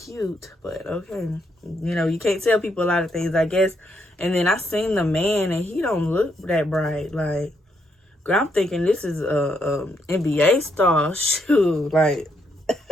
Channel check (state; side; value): normal; both; correlation 0.76